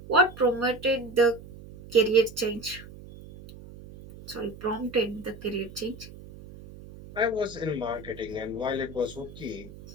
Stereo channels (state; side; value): noise; right; hum, 17 dB below the sound